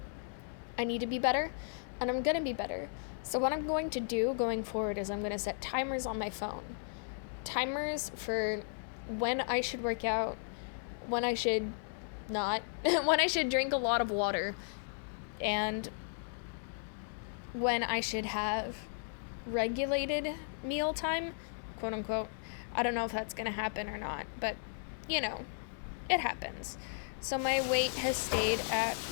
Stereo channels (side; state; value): right; silent; digital silence